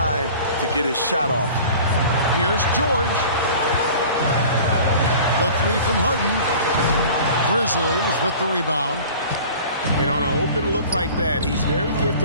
to get his shot off. Here's George. The three from Harden. Grizzlies with the rebound. And on an open look like that, he's very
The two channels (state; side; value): inverted; both; correlation -0.43